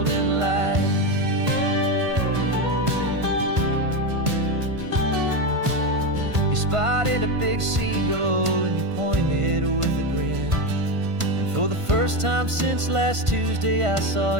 light. You spotted a big seagull and you pointed with a grin. And for the first time since last Tuesday, I saw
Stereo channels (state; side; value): late; left; 1.5 ms